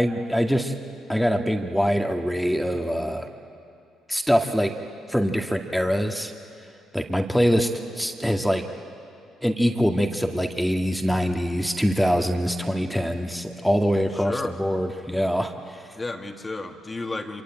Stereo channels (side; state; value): both; normal; correlation 0.96